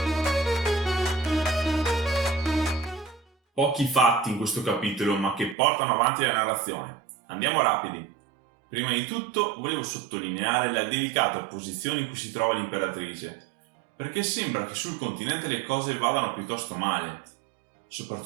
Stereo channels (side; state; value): left; drops out; at 5.6 s